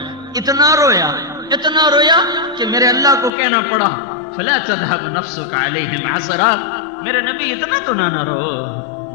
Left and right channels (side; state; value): right; drops out; at 3.3 s